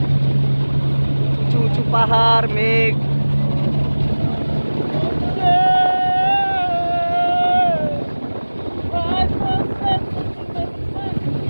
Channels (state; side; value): inverted; both; correlation -1.00